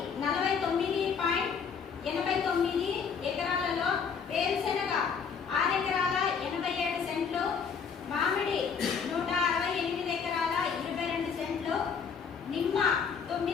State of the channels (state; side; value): quieter; right; 6.3 dB